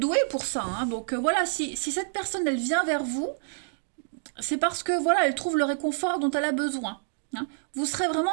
pour ça, hein. Donc voilà, si cette personne, elle vient vers vous, c'est parce que voilà, elle trouve le réconfort dont elle a besoin, hein. Vous serez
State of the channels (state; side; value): silent; left; digital silence